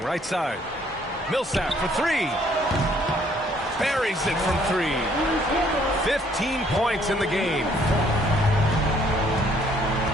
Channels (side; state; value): both; normal; correlation 0.64